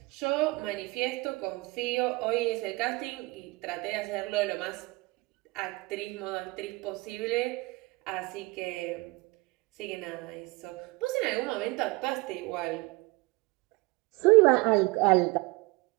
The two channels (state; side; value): quieter; left; 24.0 dB